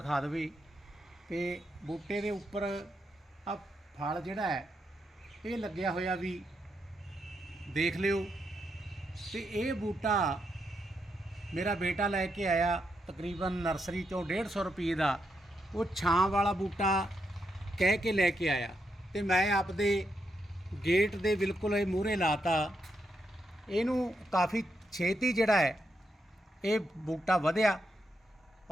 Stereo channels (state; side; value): normal; both; correlation 0.82